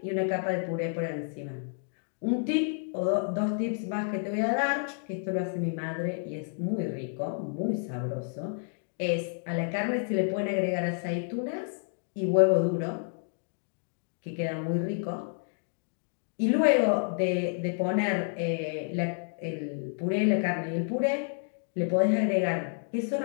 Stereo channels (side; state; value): right; silent; 58 dB below the other